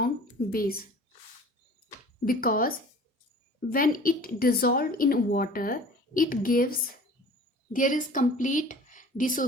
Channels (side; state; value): both; normal; correlation 0.45